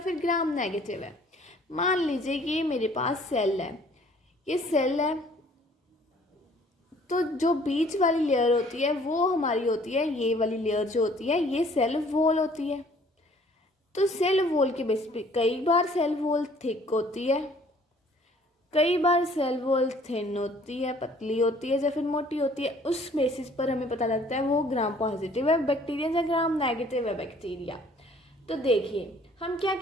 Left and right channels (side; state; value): both; normal; correlation 0.57